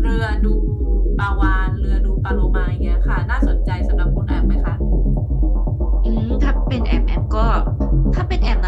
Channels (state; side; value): identical; both; correlation 1.00